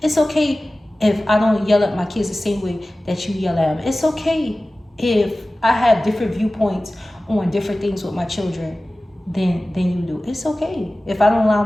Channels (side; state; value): both; normal; correlation 0.97